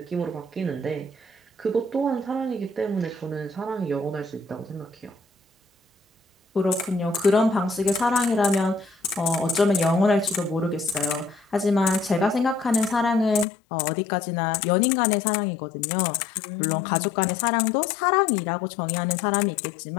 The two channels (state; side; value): drops out; right; at 13.5 s